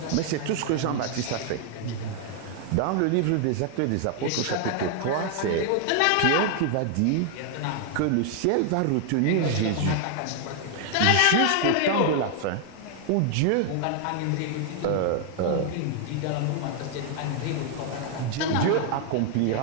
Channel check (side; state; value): both; different; correlation 0.00